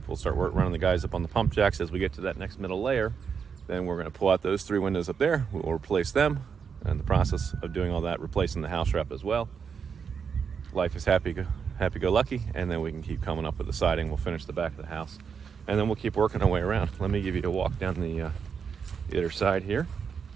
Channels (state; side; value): quieter; left; 6.5 dB